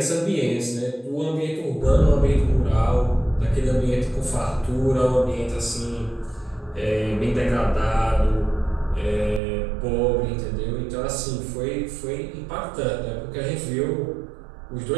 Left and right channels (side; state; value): left; drops out; at 9.4 s